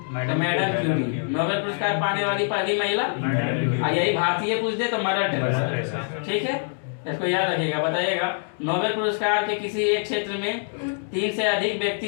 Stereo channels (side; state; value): right; silent; digital silence